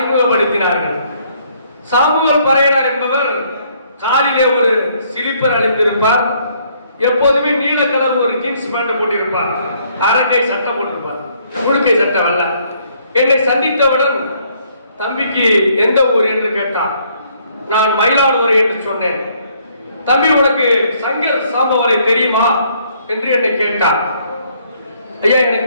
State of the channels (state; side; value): inverted; both; correlation -0.66